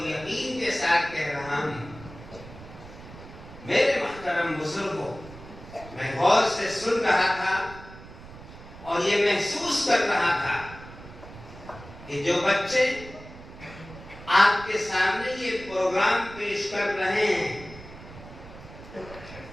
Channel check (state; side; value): noise; right; rumble, 16 dB below the sound